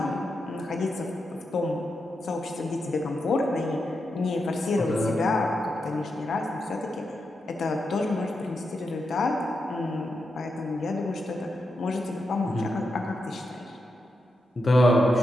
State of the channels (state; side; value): normal; both; correlation 0.86